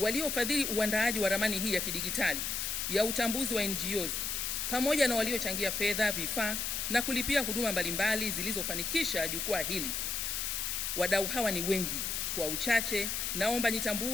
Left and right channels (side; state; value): left; noise; hiss, 1 dB below the sound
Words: uandaaji wa ramani hii ya kidigitali ya utambuzi wa NGOs pamoja na waliochangia fedha, vifaa na kulipia huduma mbalimbali zilizofanikisha jukwaa hili. Wadau hawa ni wengi. Kwa uchache, naomba